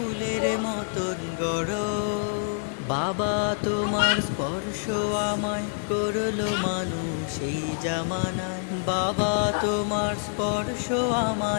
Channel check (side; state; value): right; silent; 60 dB below the other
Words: মতন গড়। বাবা তোমার স্পর্শ আমায় করলো মানুষ এই জামানায়, বাবা তোমার স্পর্শ